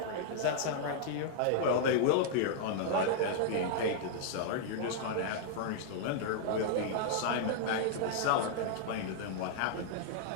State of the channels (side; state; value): both; different; correlation -0.01